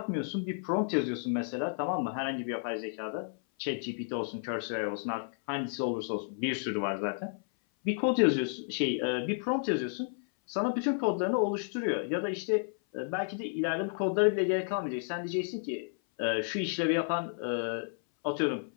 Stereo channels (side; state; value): right; silent; 57 dB below the other